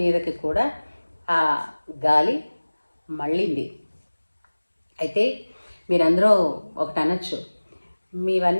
మీదకి కూడా ఆ గాలి మళ్ళింది. అయితే మీరందరూ ఒకటి అనొచ్చు,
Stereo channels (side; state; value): both; inverted; correlation -1.00